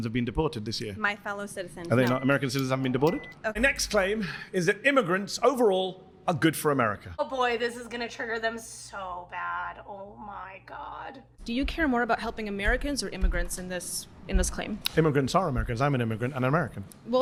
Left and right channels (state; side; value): identical; both; correlation 1.00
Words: have been deported this year. My fellow citizens. Are they not? American citizens haven't been deported? Okay. The next claim is that immigrants overall are good for America. Oh boy, this is gonna trigger them so bad. Oh my God. Do you care more about helping Americans or immigrants in this claim? Immigrants are Americans. I'm an immigrant and an American.